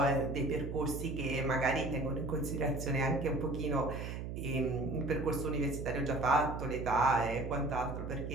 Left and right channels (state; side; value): noise; right; hum, 6 dB below the sound